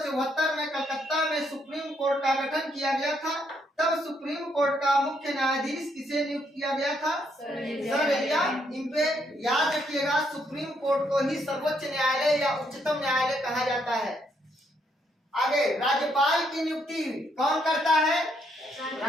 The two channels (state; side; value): normal; both; correlation 0.74